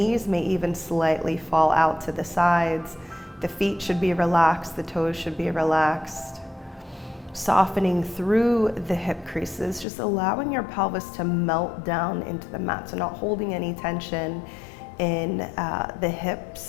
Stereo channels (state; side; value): drops out; right; at 9.9 s